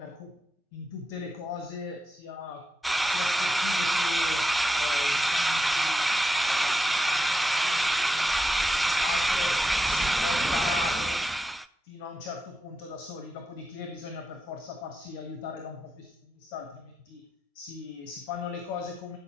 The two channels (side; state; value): both; normal; correlation 0.88